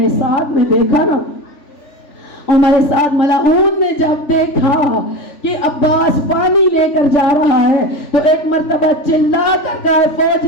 سعد نے دیکھا نا، عمر سعد ملعون نے جب دیکھا کہ عباس پانی لے کر جا رہا ہے تو ایک مرتبہ چلا کر کہا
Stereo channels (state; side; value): late; right; 3.4 ms